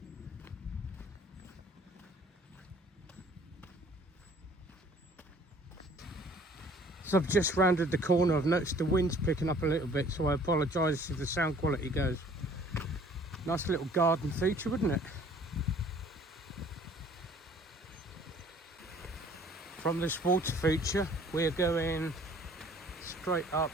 So I've just rounded the corner. I've noticed the wind's picking up a little bit, so I apologise if the sound quality goes. Nice little garden feature, wouldn't it? From this water feature, we're going straight up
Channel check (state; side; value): normal; both; correlation 0.55